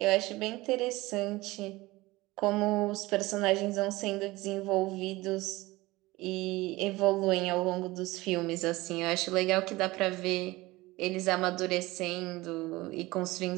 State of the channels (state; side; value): quieter; left; 20.1 dB